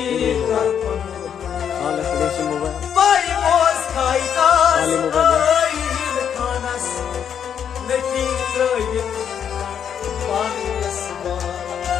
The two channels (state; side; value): quieter; right; 8.3 dB